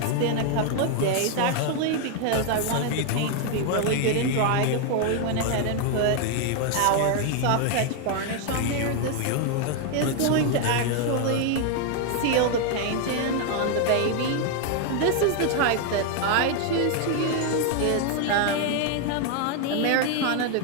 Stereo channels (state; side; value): different; both; correlation 0.01